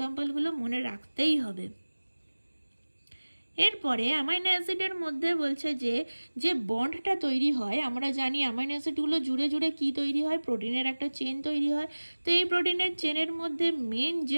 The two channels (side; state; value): both; inverted; correlation -1.00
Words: মনে রাখতেই হবে। এরপরে অ্যামাইনো অ্যাসিডের মধ্যে বলছে যে বন্ডটা তৈরি হয়, আমরা জানি অ্যামাইনো অ্যাসিডগুলো জুড়ে জুড়ে কি তৈরি হয়, প্রোটিনের একটা চেন তৈরি হয়। তো এই প্রোটিনের চেনের মধ্যে মেন